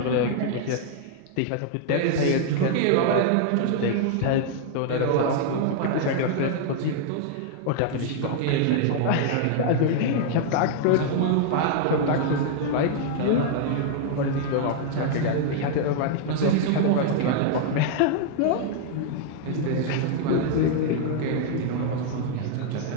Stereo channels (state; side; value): different; both; correlation -0.01